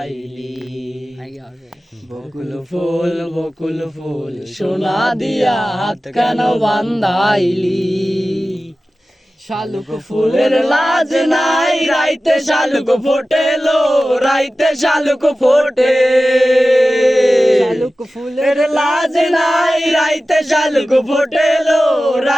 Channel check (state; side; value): normal; both; correlation 0.95